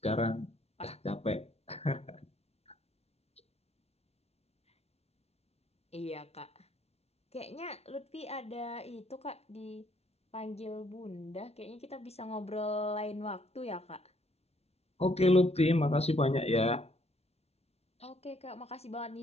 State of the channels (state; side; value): late; right; 0.30 ms